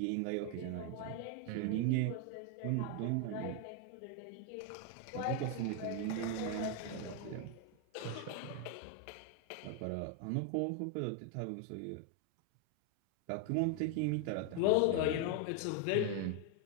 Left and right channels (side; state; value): both; different; correlation 0.00